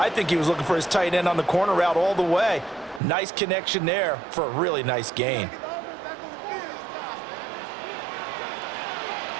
think he was looking for his tight end on the corner route all the way. Nice connection there for a really nice gain.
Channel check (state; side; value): drops out; left; at 3.0 s